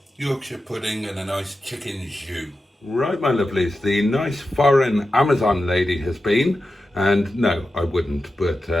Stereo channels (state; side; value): normal; both; correlation 0.91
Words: Yorkshire pudding, and a nice chicken jus. Right, my lovelies, the nice foreign Amazon lady has been, and no, I wouldn't, but